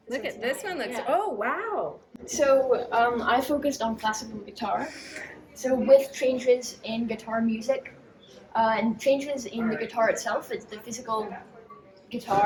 Look at this one. Looks. Oh wow. So I focused on classical guitar. So with changes in guitar music and changes in the guitar itself, it's the physical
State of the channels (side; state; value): both; identical; correlation 1.00